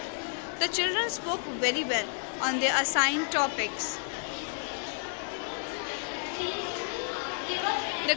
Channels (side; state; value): right; silent; 57 dB below the other